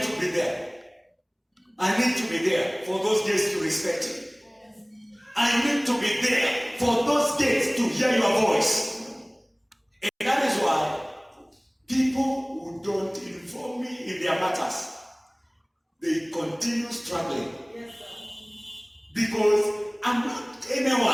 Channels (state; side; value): identical; both; correlation 1.00